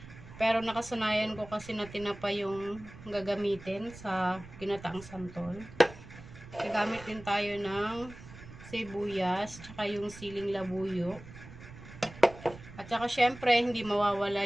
Pero nakasanayan ko kasi na tinapa yung gagamitin sa ginataang santol. Gagamit din tayo ng sibuyas. Tsaka yung siling labuyo. At saka syempre hindi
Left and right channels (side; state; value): right; noise; rumble, 16 dB below the sound